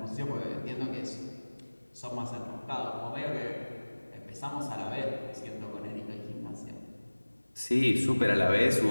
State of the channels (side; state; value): both; inverted; correlation -1.00